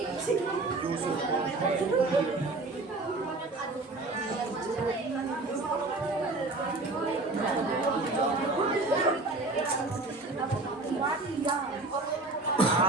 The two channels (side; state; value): left; quieter; 3.2 dB